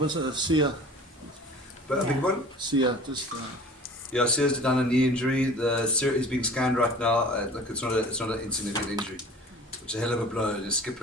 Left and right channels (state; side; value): normal; both; correlation 0.44